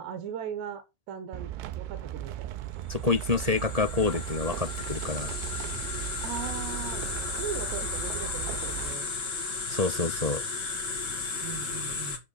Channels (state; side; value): late; left; 1.8 ms